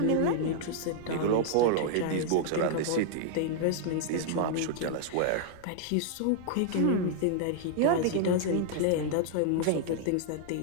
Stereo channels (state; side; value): different; both; correlation -0.01